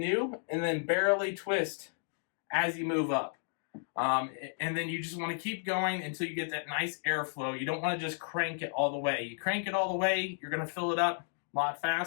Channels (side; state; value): right; silent; digital silence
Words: and then barely twist as you move up. And then you just want to keep going until you get that nice airflow. You don't want to just crank it all the way. You crank it all the way, you're going to fill it up a lot